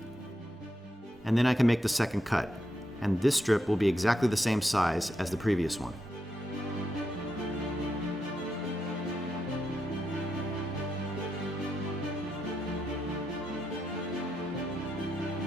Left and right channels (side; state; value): both; normal; correlation 0.84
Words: and then I can make the second cut. And this strip will be exactly the same size as the previous one.